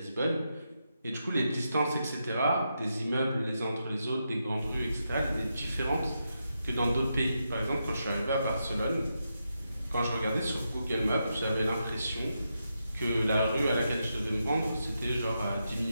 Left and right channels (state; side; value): inverted; both; correlation -0.85